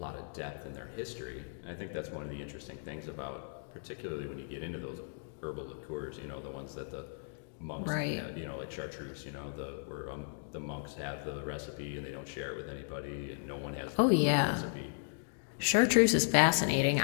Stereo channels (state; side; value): silent; right; digital silence